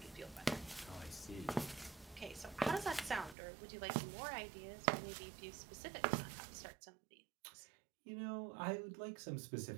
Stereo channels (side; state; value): left; drops out; at 3.4 s